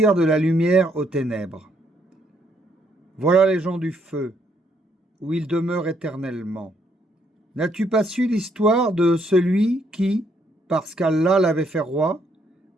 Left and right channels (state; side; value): normal; both; correlation 0.72